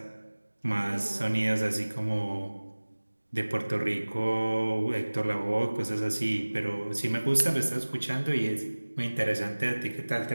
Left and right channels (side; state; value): both; inverted; correlation -1.00